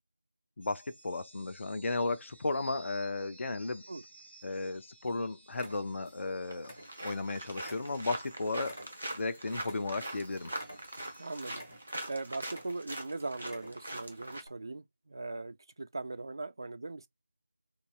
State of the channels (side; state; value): both; inverted; correlation -0.85